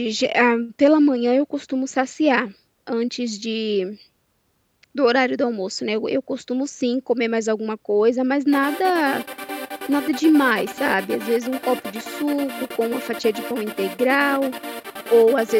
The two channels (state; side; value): identical; both; correlation 1.00